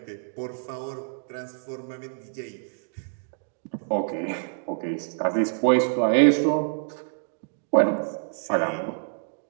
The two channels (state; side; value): silent; left; digital silence